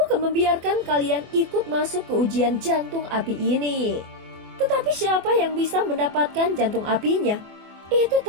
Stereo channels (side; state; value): left; late; 24 ms